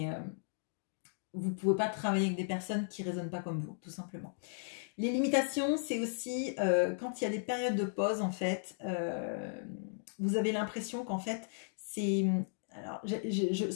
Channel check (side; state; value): right; silent; digital silence